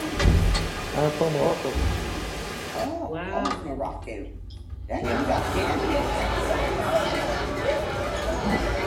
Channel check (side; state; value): both; identical; correlation 1.00